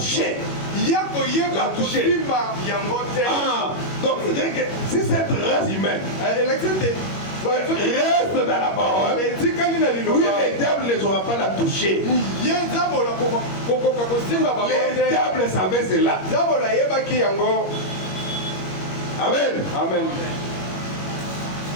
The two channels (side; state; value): right; late; 21 ms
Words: Donc, c'est-à-dire que si cette race humaine reste dans la parole, oui, le diable ne saura pas la toucher. Le diable savait cela. Amen. Amen.